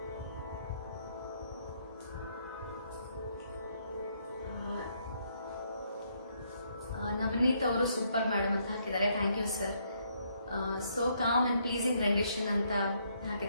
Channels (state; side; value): inverted; both; correlation -0.72